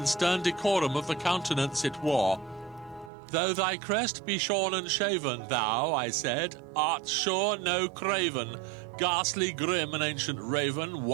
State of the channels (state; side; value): drops out; left; at 3.1 s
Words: stern decorum of the countenance it wore. Though thy crest be shorn and shaven, thou, I said, art sure no craven, ghastly grim and ancient raven,